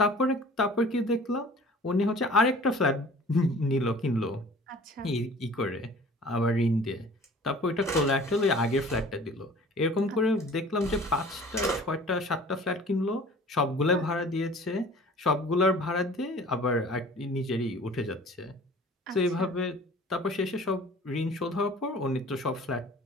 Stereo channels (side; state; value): both; normal; correlation 0.47